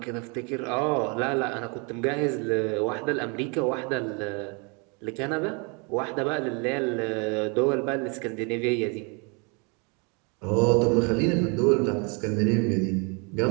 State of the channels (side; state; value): left; quieter; 32.9 dB